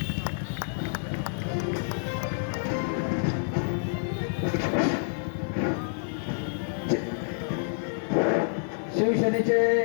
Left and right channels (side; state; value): right; silent; 59 dB below the other